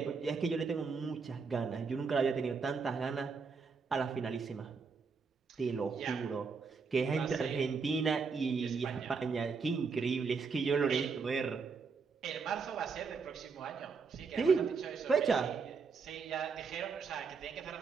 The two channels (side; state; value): left; quieter; 5.1 dB